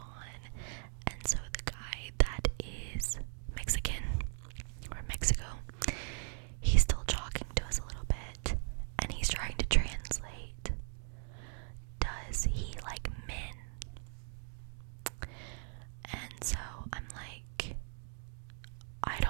And so the guy that is Mexican, or Mexico, he's still talking to us a little bit, and he's trying to translate. Does he like men? And so I'm like, I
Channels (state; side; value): silent; left; 52 dB below the other